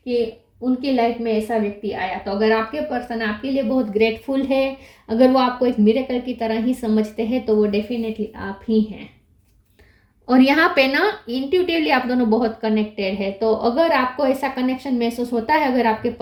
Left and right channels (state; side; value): identical; both; correlation 1.00